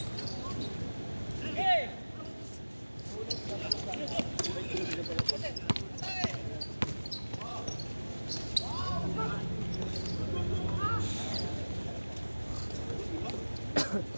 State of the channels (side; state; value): both; inverted; correlation -1.00